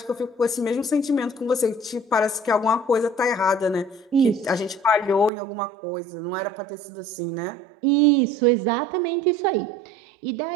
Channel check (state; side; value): drops out; left; at 5.3 s